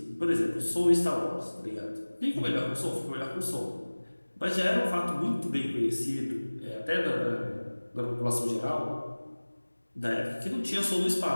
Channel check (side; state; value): both; inverted; correlation -1.00